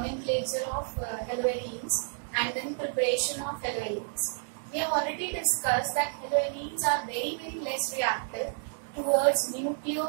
of haloarenes and then preparation of haloarenes. We have already discussed that haloarenes are very less reactive towards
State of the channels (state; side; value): silent; left; digital silence